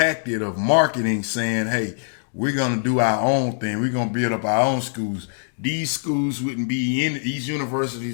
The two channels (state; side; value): silent; right; digital silence